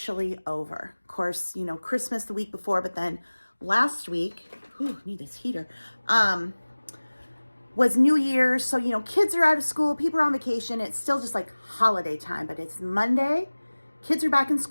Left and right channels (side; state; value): both; inverted; correlation -1.00